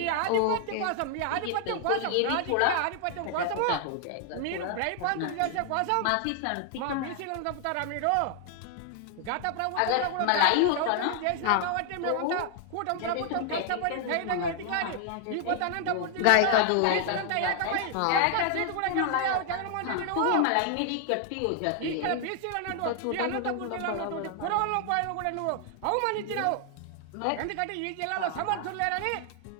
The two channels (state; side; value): different; both; correlation 0.00